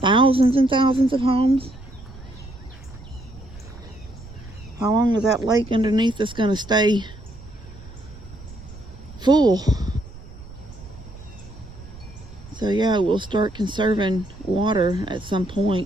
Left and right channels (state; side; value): noise; right; rumble, 17 dB below the sound